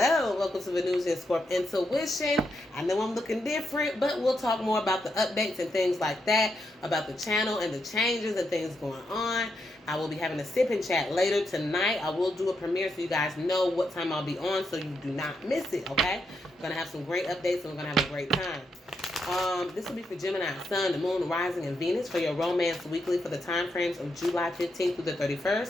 welcome to Venusianscorp Intuition. I know I'm looking different, but we'll talk more about the updates and things like that, about the channel and the changes and things going on. I will be having a sip and chat later tonight. I will do a premiere so you guys know what time I'll be on so you do not miss it, okay? I'm going to have some great updates and we're going to have a great time. This will be for Gemini, Sun, the Moon, Rising, and Venus for your romance weekly for the time frames of July 15th through the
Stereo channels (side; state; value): both; normal; correlation 0.82